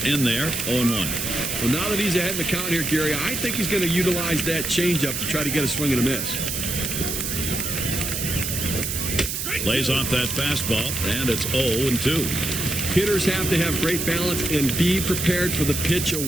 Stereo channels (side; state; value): right; noise; hiss, 3 dB below the sound